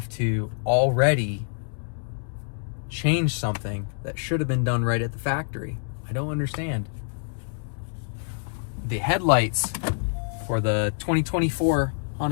to already change something that should have been done right at the factory. I don't understand. The headlights for the 2024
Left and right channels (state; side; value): silent; right; digital silence